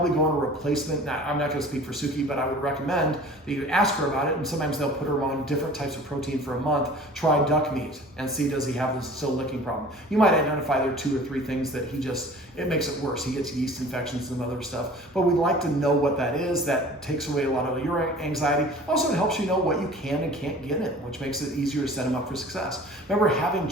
go on a replacement. Now, I'm not going to speak for Suki, but I would recommend that you ask her about it. And sometimes they'll put her on different types of protein for a month. Try duck meat and see, does he have this still licking problem. You might identify there are 2 or 3 things that it makes it worse. He gets yeast infections and other stuff. But we'd like to know what that is. That takes away a lot of your anxiety. Also, it helps you know what you can and can't get in, which makes it easier to set him up for success. Remember, having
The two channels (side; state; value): both; normal; correlation 0.45